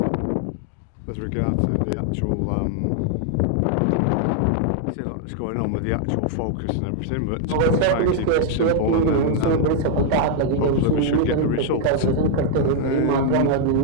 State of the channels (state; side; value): different; both; correlation 0.00